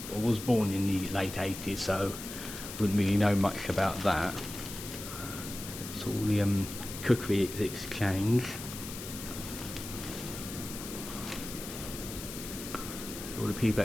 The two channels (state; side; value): noise; left; hiss, 10 dB below the sound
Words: was born in the late 80s, so wouldn't really know much about that. It's all the cookery exchange. All the people